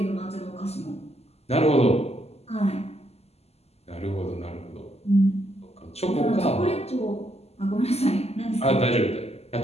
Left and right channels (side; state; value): right; late; 0.30 ms